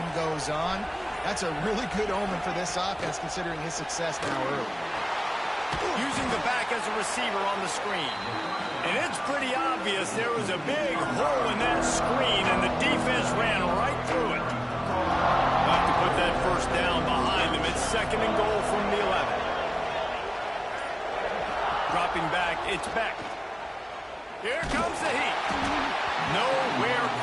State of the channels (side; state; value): both; identical; correlation 1.00